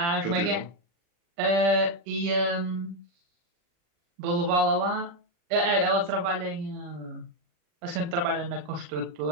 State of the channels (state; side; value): late; left; 39 ms